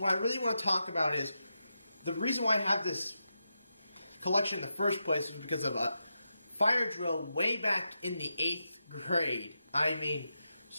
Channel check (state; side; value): inverted; both; correlation -0.88